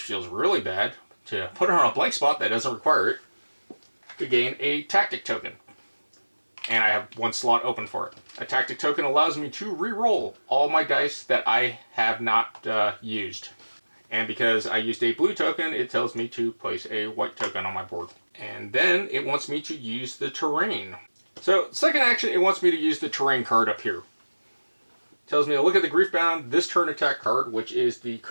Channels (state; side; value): inverted; both; correlation -1.00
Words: feels really bad, to put it on a blank spot that doesn't require it, to gain a tactic token. And I have 1 slot open for it. A tactic token allows me to re-roll all my dice that I have not used. And because I used a blue token, it tells me to place a white token on my board. And then it wants me to use the terrain. So, second action, it wants me to use the terrain card up here. It tells me to look at the Griefbound this turn attack card, which is the